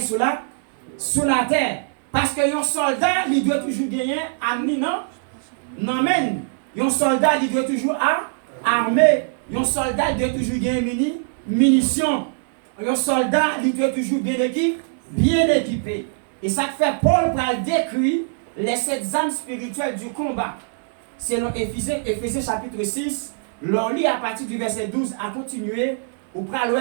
sous la terre. Parce que un soldat, il doit toujours gagner armé non men. Un soldat, il doit toujours armé. Un soldat doit toujours gagner munitions. Un soldat, il doit toujours bien équipé. Et ça fait Paul pour décrire les 7 armes spirituelles du combat. Selon Éphésiens chapitre 6, l'on lit à partir du verset 12 à continuer, où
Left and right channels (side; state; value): left; silent; digital silence